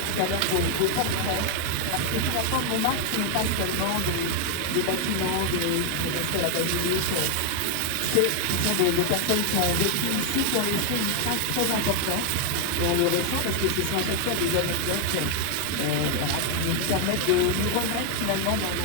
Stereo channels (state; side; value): different; both; correlation 0.01